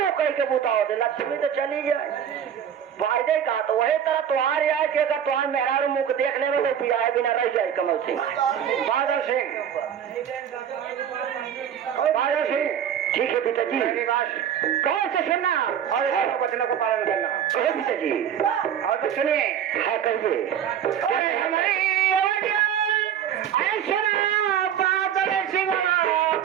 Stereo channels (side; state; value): left; quieter; 9.1 dB